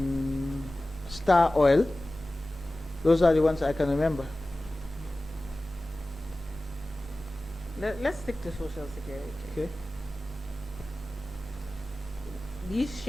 Star Oil. Those are the ones I can remember. Let's stick to Social Security. Okay. These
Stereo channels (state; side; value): normal; both; correlation 0.96